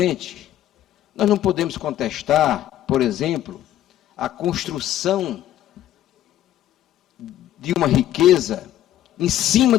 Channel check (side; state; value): right; quieter; 12.6 dB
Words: nós não podemos contestar, por exemplo, a construção de uma riqueza em cima